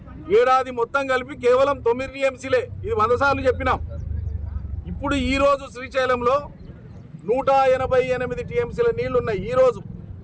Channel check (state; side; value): identical; both; correlation 1.00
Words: ఏడాది మొత్తం కలిపి కేవలం 9 టీఎంసీలే. ఇది 100 సార్లు చెప్పినాం. ఇప్పుడు ఈరోజు శ్రీశైలంలో 188 టీఎంసీల నీళ్లు ఉన్నాయి. ఈరోజు